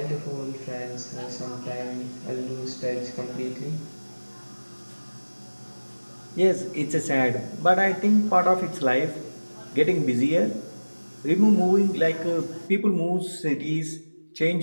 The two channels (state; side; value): inverted; both; correlation -1.00